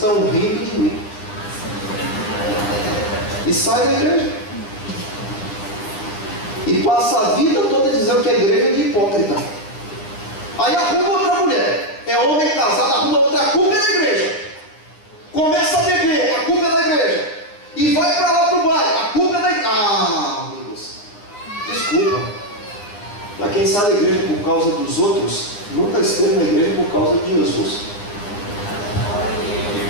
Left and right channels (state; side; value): late; right; 9.9 ms